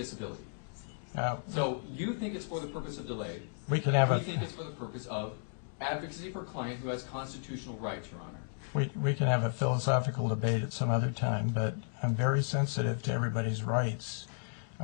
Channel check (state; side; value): silent; right; digital silence